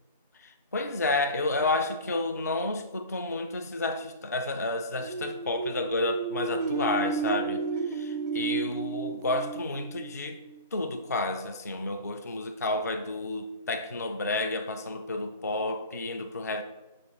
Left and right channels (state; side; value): inverted; both; correlation -0.32